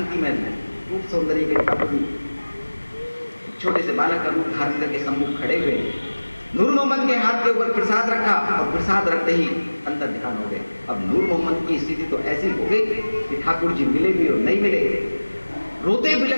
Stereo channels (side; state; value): both; inverted; correlation -1.00